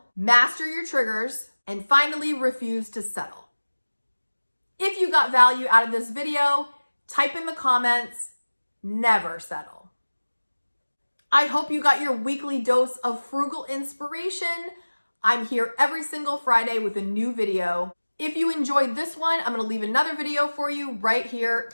master your triggers, and finally refuse to settle. If you got value out of this video, type in the comments, never settle. I hope you got your weekly dose of frugal inspiration. I'm here every single Friday with a new video. If you enjoyed this one, I'm gonna leave another video for you right here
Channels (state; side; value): inverted; both; correlation -1.00